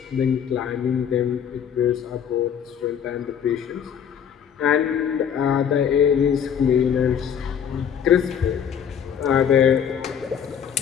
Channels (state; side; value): quieter; right; 8.2 dB